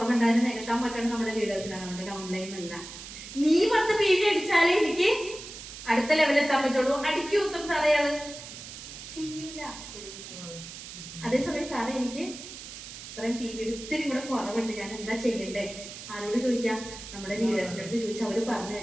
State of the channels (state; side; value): noise; right; hiss, 12 dB below the sound